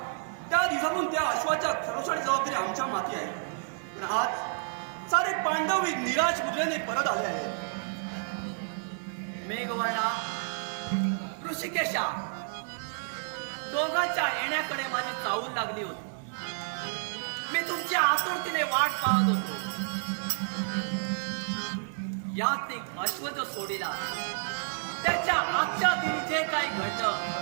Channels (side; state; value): left; silent; digital silence